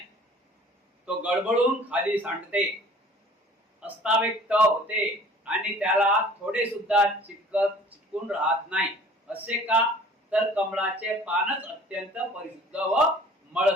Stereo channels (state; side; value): normal; both; correlation 0.50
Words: तो गडबडून खाली सांडते, अस्ताव्यक्त होते आणि त्याला थोडे सुद्धा चिटकून राहत नाही. असे का? तर कमळाचे पानच अत्यंत परिशुद्ध व